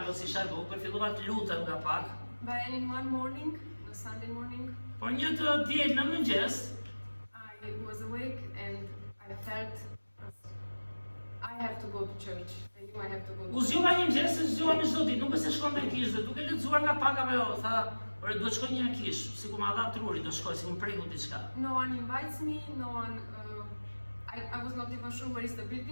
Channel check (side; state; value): both; inverted; correlation -1.00